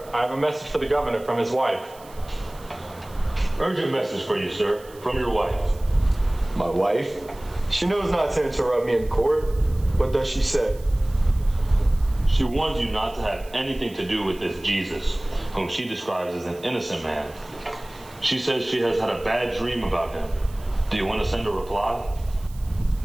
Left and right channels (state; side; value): noise; right; hiss, 23 dB below the sound